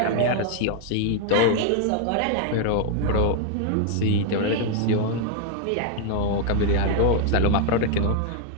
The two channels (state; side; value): different; both; correlation 0.00